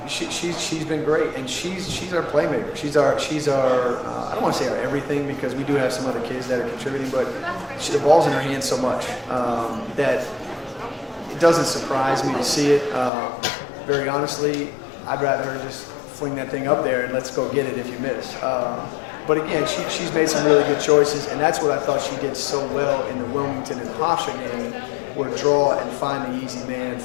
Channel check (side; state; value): right; drops out; at 13.1 s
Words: she's been great, and she's our playmaker. She's our I don't want to say our everything because we do have some other kids that are contributing, but the ball's in her hands so much that it doesn't surprise me to see it. Very honestly, I'd rather her just fling that thing up there and let's go get it if you miss. But again, she's made some really good choices, and that's what I thought she did so well in the Wilmington and Hofstra game, where draw and find the easy man